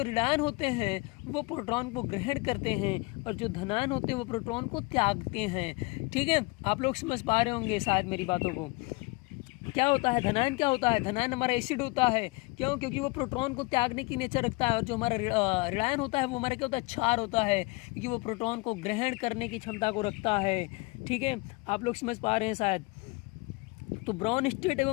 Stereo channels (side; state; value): right; quieter; 25.6 dB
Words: ऋणायन होते हैं वो प्रोटॉन को ग्रहण करते हैं, और जो धनायन होते हैं वो प्रोटॉन को त्यागते हैं। ठीक है, आप लोग समझ पा रहे होंगे शायद मेरी बातों को। क्या होता है, धनायन क्या होता है, धनायन हमारा एसिड होता है। क्यों? क्योंकि वो प्रोटॉन को त्यागने की नेचर रखता है। और जो हमारा ऋणायन होता है वो हमारा क्या होता है, क्षार होता है, क्योंकि वो प्रोटॉन को ग्रहण करने की क्षमता को रखता है। ठीक है, आप लोग समझ पा रहे हैं शायद। तो ब्राउनस्टेट